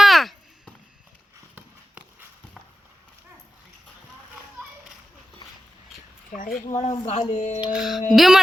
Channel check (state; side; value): normal; both; correlation 0.93